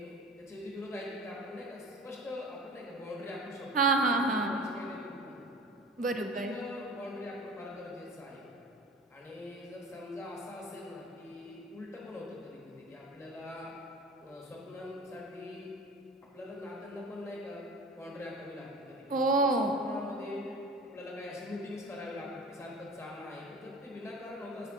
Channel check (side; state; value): both; normal; correlation 0.39